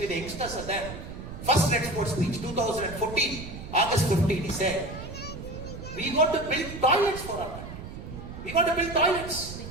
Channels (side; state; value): right; noise; rumble, 11 dB below the sound